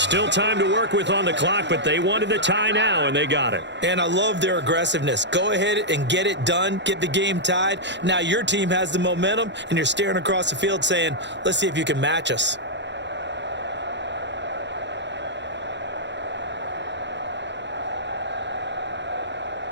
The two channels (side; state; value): left; late; 0.52 ms